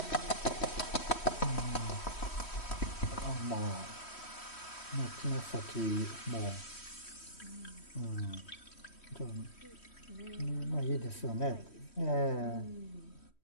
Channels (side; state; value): right; late; 3.1 ms